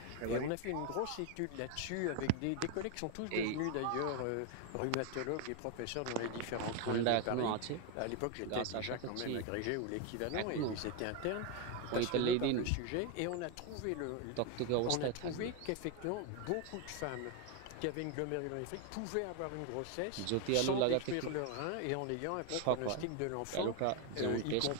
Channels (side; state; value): both; different; correlation 0.01